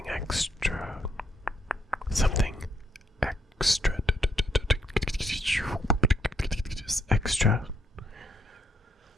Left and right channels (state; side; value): normal; both; correlation 0.73